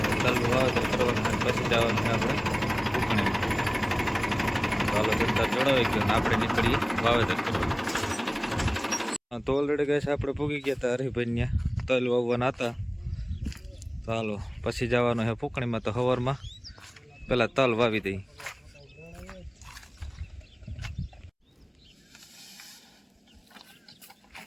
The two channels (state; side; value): identical; both; correlation 1.00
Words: તલનું વાવેતર કરવાનું પછી જવાનું છે આપણે ઉકણીમાં. ચાલો દંતાર જોડાવી ગયો ને આપણે નીકળીએ વાવેતર કરવા. તો ઓલરેડી ગેસ આપણે પૂગી ગયા હતા હરિભાઈ ત્યાં તલ વાવવાના હતા. ચાલો પછી જવાનું છે ફૂકણીમાં. તો સવારમાં પેલા તલ વાવી દઈ.